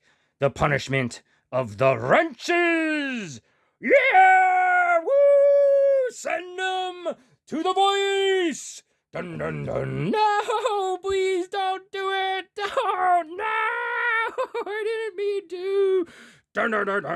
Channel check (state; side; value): identical; both; correlation 1.00